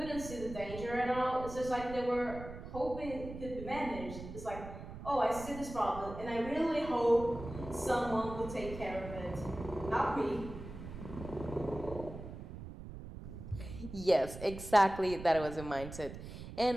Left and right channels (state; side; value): noise; right; rumble, 11 dB below the sound